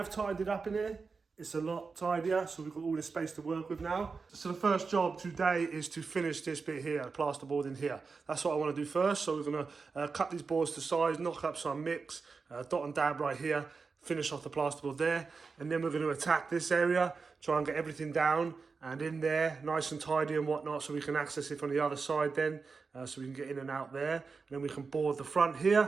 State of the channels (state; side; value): quieter; left; 4.7 dB